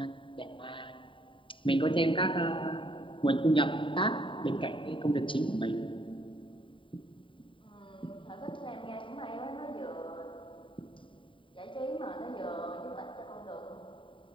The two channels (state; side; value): late; right; 0.25 ms